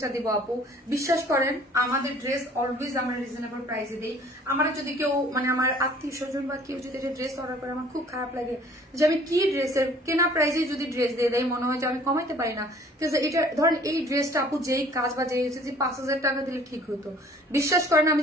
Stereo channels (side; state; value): both; normal; correlation 0.53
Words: দিব আপু, বিশ্বাস করেন আমাদের ড্রেস অলওয়েজ আমরা রিজনেবল প্রাইসে দিই। আমার যদি কেউ মানে আমার আত্মীয় স্বজন বা কেউ যদি ড্রেস অর্ডার করে, আমার খুব খারাপ লাগে যে আমি কি ড্রেসের কেনা প্রাইসে যদি ড্রেস দিয়ে দেয়, মনে হয় যে আমি কমাইতে পারি না। কিন্তু এটা ধরেন এই ড্রেসটা আপু যেই কাজ বা যেই হচ্ছে যে 5,000 টাকা দিলে ঠিক হতো। বিশ্বাস করেন আমি